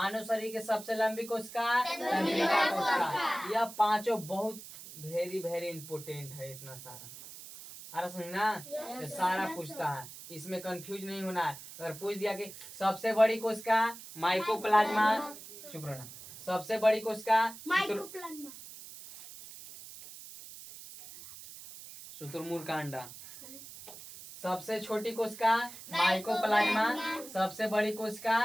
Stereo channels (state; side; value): noise; right; hiss, 14 dB below the sound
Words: शरीर के सबसे लंबी कोशिका तंत्रिका कोशिका। यह पांचों बहुत वेरी वेरी इंपोर्टेंट है। इतना सारा अरे समझना ये सारा पूछता है। इसमें कंफ्यूज नहीं होना है। अगर पूछ दिया कि सबसे बड़ी कोशिका माइकोप्लाज्मा, चुप रहना। सबसे बड़ी कोशिका शुतुरमुर्ग का अंडा। सबसे छोटी कोशिका माइकोप्लाज्मा। सबसे बड़ी कोशिका